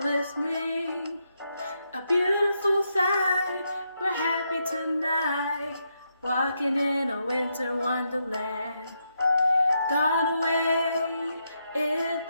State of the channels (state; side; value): inverted; both; correlation -0.81